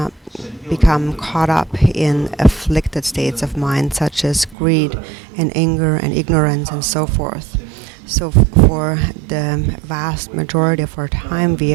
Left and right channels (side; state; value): left; drops out; at 4.5 s